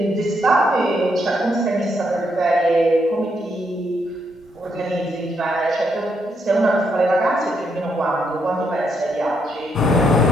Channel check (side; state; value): both; normal; correlation 0.77